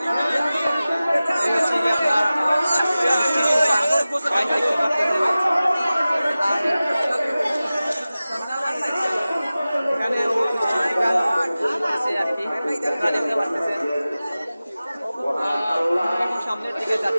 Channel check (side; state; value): both; inverted; correlation -0.96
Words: এখানে আছে আর কি, আপনারা দেখতে পাচ্ছেন। সামনের দিকে